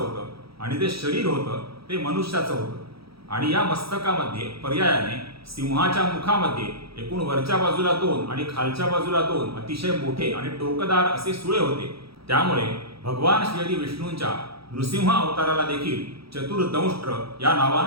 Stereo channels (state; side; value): late; left; 0.76 ms